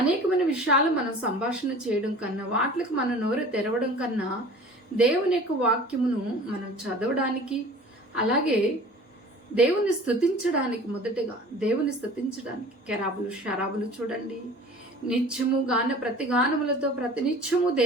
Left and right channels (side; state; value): both; normal; correlation 0.43